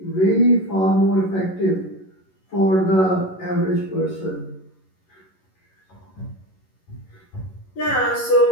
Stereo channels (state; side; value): late; right; 11 ms